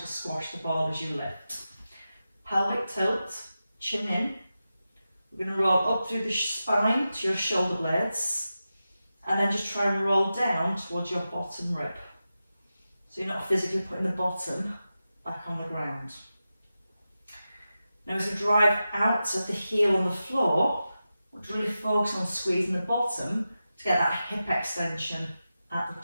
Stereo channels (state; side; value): inverted; both; correlation -0.92